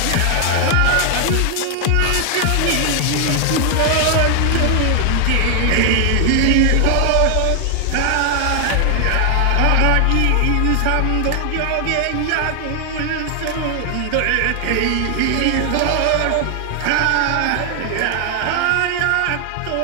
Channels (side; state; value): both; different; correlation 0.00